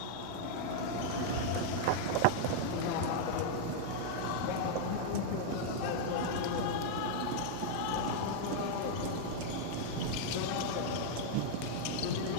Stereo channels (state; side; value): different; both; correlation 0.00